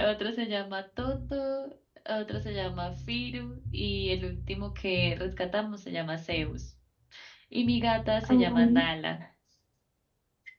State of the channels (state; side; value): identical; both; correlation 1.00